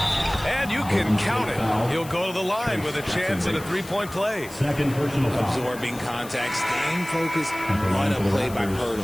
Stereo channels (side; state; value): left; noise; hiss, 17 dB below the sound